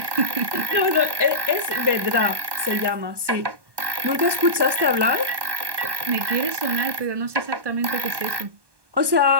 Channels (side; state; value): left; late; 1.1 ms